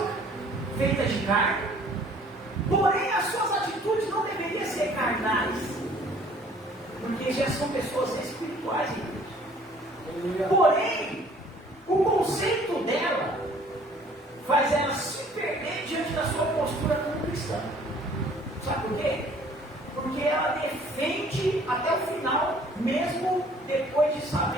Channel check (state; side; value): normal; both; correlation 0.55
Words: feitas de carne, porém as suas atitudes não deveriam ser carnais, porque já são pessoas espirituais em Deus. Porém, o conceito dela faz ela se perder diante da sua postura como cristã. Sabe por quê? Porque ela defende até o final, mesmo depois de